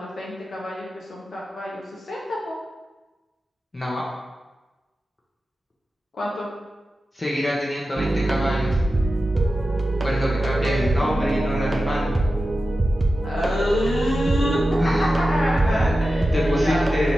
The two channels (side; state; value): both; normal; correlation 0.93